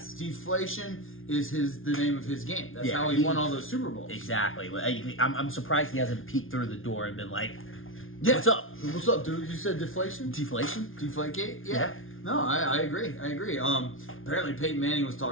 Deflation is the name of his game. That's how he won all those Super Bowls. Exactly. I'm surprised he hasn't peeked through the door and been like, yeah. What's up? What's up, dude? You said deflation? Deflation? Deflategate? Yeah. No, I agree. Apparently Peyton Manning was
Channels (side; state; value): right; late; 0.59 ms